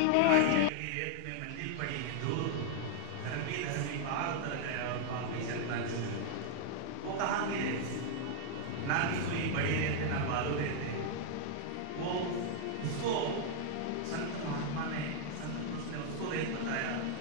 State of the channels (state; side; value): different; both; correlation 0.00